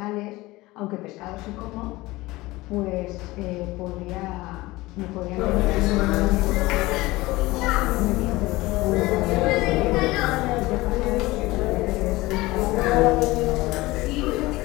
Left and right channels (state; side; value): quieter; right; 20.0 dB